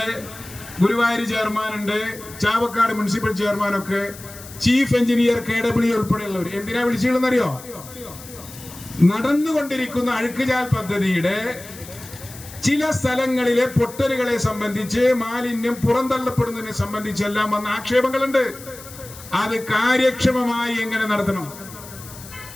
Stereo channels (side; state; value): left; noise; hiss, 16 dB below the sound